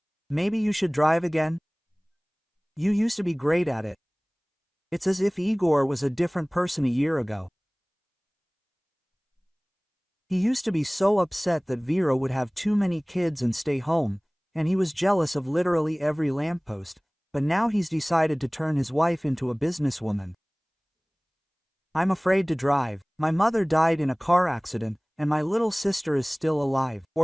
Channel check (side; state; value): both; identical; correlation 1.00